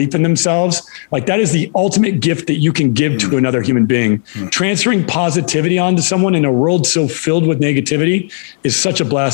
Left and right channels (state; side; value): silent; right; digital silence